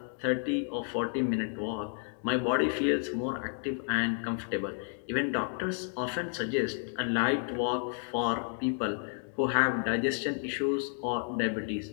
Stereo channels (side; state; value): right; silent; 57 dB below the other